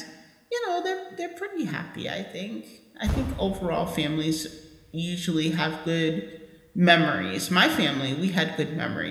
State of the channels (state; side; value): identical; both; correlation 1.00